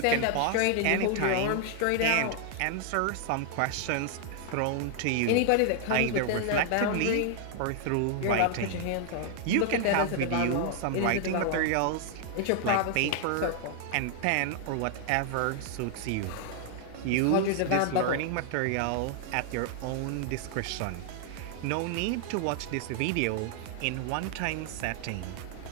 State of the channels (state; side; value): different; both; correlation 0.00